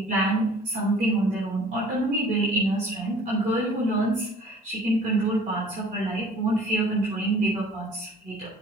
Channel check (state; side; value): normal; both; correlation 0.50